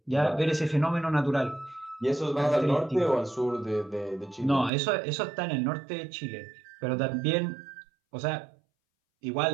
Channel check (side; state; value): left; drops out; at 4.7 s